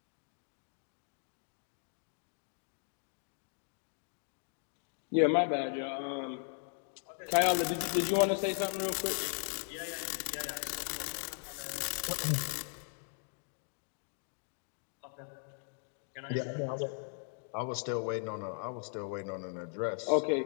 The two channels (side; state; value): right; silent; 53 dB below the other